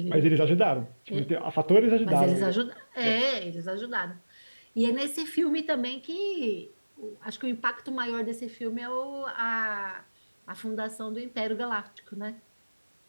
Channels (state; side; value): inverted; both; correlation -1.00